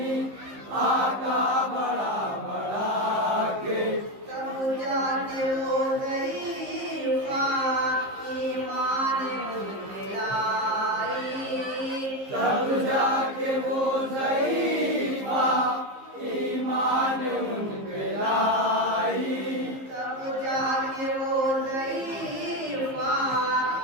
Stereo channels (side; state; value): left; late; 15 ms